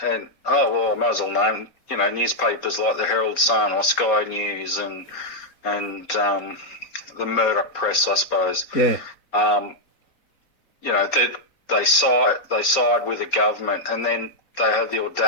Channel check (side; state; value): right; late; 4.2 ms